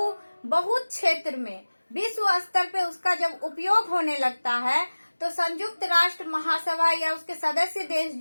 बहुत क्षेत्र में विश्व स्तर पे उसका जब उपयोग होने लगता है, तो संयुक्त राष्ट्र महासभा या उसके सदस्य देश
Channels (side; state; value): both; inverted; correlation -1.00